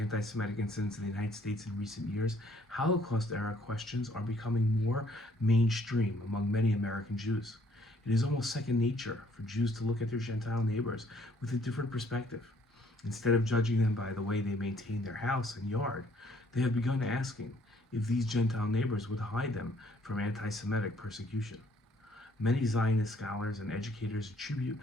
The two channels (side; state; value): both; normal; correlation 0.63